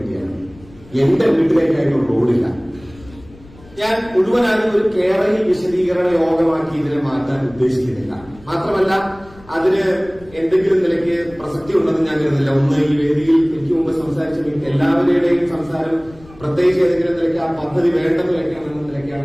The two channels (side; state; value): left; noise; rumble, 23 dB below the sound